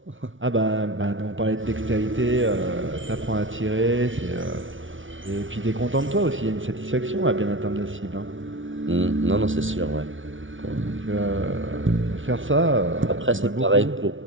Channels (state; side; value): late; left; 0.56 ms